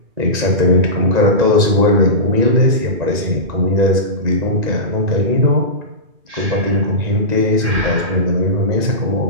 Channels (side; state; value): left; late; 1.9 ms